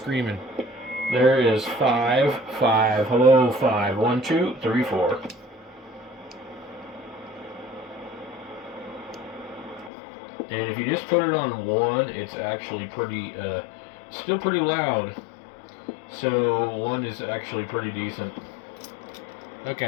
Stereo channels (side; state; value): right; drops out; at 9.9 s